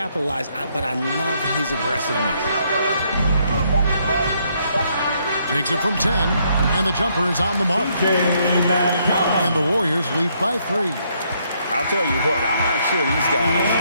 but I love his aggressiveness. Takes it from 10, and the jumper is on the mark. And the Warriors lead by 3. I'll tell you what, I'm not sure these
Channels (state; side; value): inverted; both; correlation -0.72